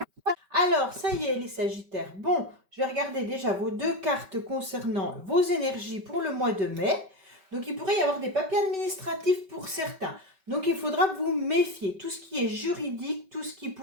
Alors, ça y est, les Sagittaires. Bon, je vais regarder déjà vos 2 cartes concernant vos énergies pour le mois de mai. Donc, il pourrait y avoir des papiers administratifs pour certains. Donc, il faudra vous méfier. Tout ce qui est juridique, tout ce qui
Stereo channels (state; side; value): late; left; 5.2 ms